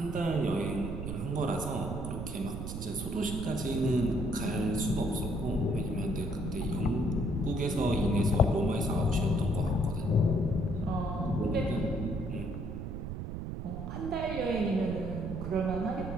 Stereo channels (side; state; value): right; noise; rumble, 6 dB below the sound